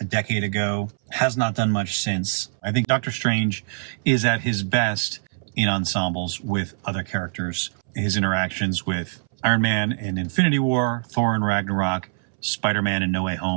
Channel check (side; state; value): left; silent; 63 dB below the other